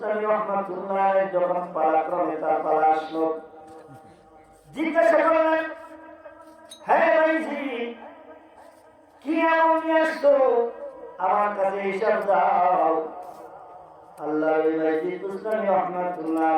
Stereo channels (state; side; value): identical; both; correlation 1.00